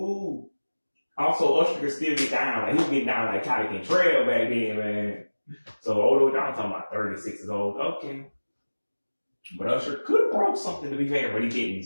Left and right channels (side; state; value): both; inverted; correlation -1.00